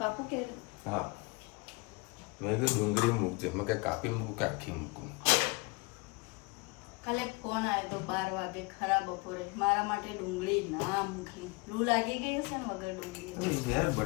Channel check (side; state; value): right; quieter; 27.7 dB